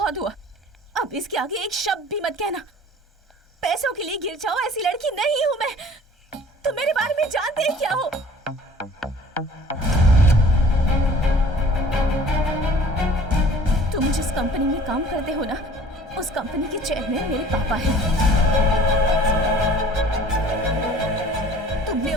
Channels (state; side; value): normal; both; correlation 0.49